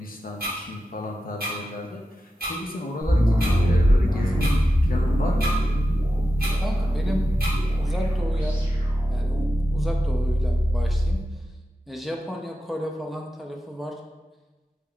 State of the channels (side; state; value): both; normal; correlation 0.91